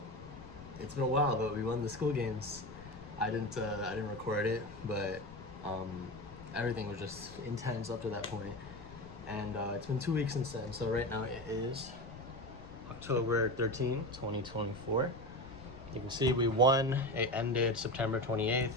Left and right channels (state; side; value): noise; left; rumble, 17 dB below the sound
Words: it's been a while, but we won the school games. I didn't record it, but um, everything was just intense up to that point. And it's been 2 weeks since then. So right now it is October 13, 2024. You can see we won. It ended September 28th.